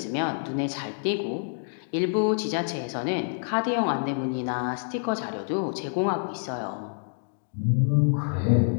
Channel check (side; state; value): right; silent; digital silence